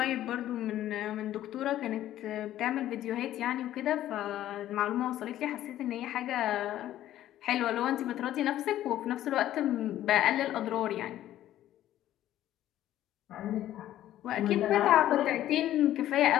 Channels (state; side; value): quieter; right; 12.9 dB